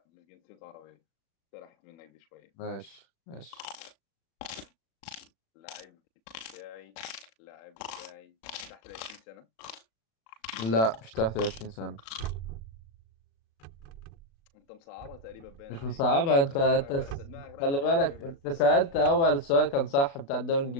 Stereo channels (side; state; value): right; late; 36 ms